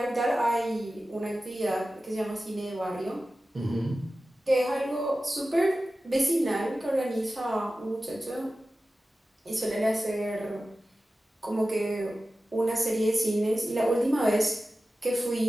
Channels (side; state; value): both; normal; correlation 0.94